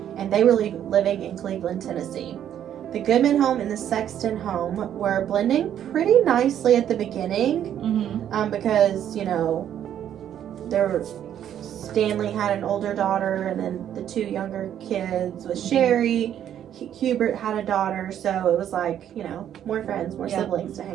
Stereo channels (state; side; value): quieter; left; 10.2 dB